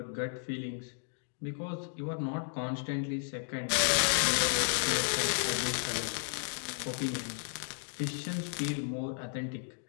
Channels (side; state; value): right; silent; digital silence